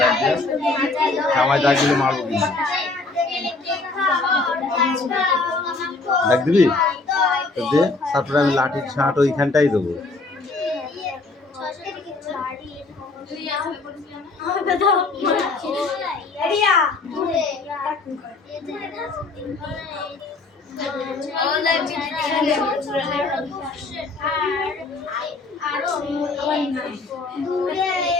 জামাই দাগ দিলে মারবো কিন্তু। দাগ দিবি দে, তারপরে আমি লাঠির ছাঁট ওইখানটাই দেবো।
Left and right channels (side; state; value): right; quieter; 3.6 dB